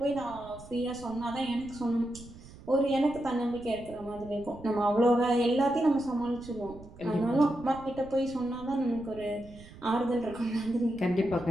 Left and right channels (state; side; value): noise; right; rumble, 18 dB below the sound